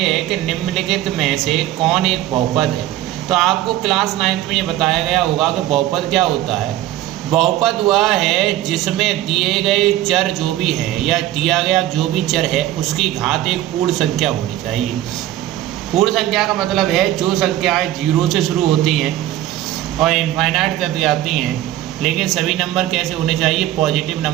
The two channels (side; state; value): left; quieter; 13.9 dB